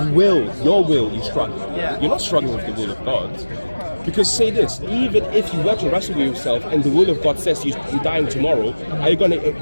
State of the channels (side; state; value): both; inverted; correlation -1.00